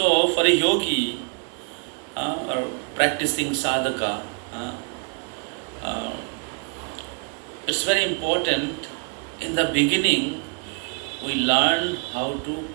for a yogi or practicing sadhaka, it's very important. In the beginning, we learn how to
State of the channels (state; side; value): quieter; left; 37.6 dB